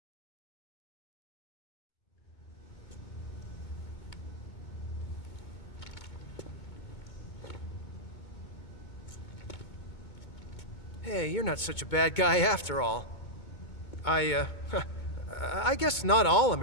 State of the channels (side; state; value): right; late; 2.2 ms